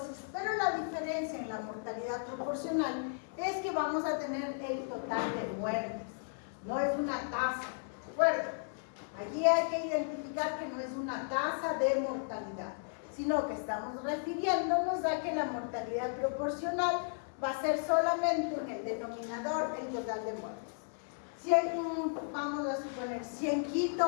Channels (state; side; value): silent; right; 55 dB below the other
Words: pero la diferencia en la mortalidad proporcional es que vamos a tener el total de muertes, no es una tasa, ¿de acuerdo? Aquí hay que identificar que no es una tasa de mortalidad, sino que estamos refiriéndonos a que la mortalidad proporcional va a ser solamente en el denominador el total de muertes. Si vamos a suponer, si en